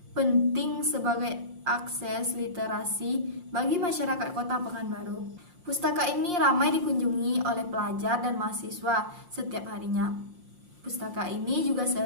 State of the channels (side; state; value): left; late; 5.7 ms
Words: penting sebagai akses literasi bagi masyarakat Kota Pekanbaru. Pustaka ini ramai dikunjungi oleh pelajar dan mahasiswa setiap harinya. Pustaka ini juga